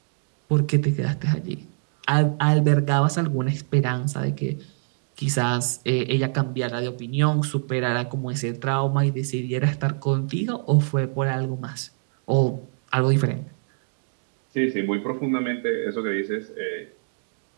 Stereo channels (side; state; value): left; silent; 59 dB below the other